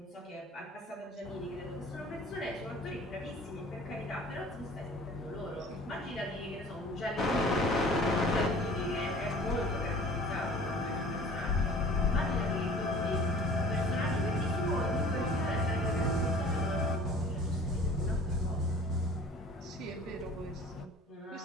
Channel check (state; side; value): normal; both; correlation 0.47